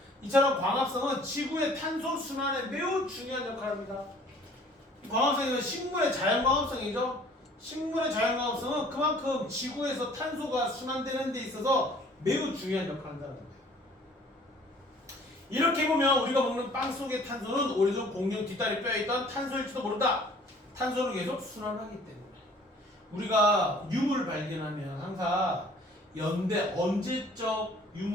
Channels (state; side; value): normal; both; correlation 0.53